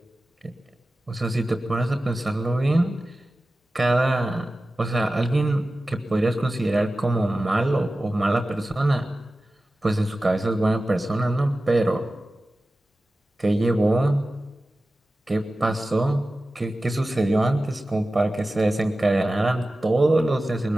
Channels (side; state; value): both; normal; correlation 0.95